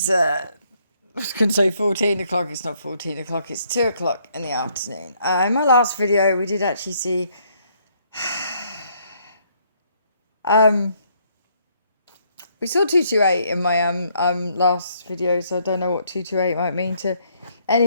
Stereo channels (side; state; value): both; inverted; correlation -0.69